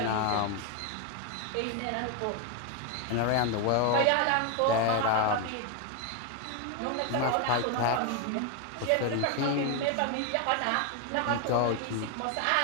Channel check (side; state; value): both; different; correlation 0.01